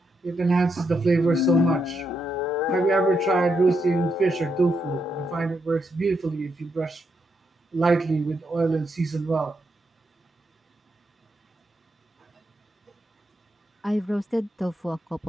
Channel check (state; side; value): normal; both; correlation 0.81